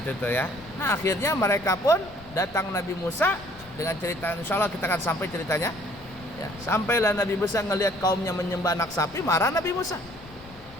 tuh ya. Nah akhirnya mereka pun datang Nabi Musa dengan cerita, insya Allah kita akan sampai ceritanya ya. Sampailah Nabi Musa ngelihat kaumnya menyembah anak sapi, marah Nabi Musa.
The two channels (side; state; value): left; noise; rumble, 21 dB below the sound